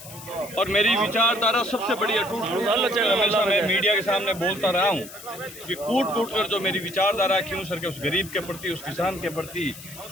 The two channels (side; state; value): left; noise; hiss, 15 dB below the sound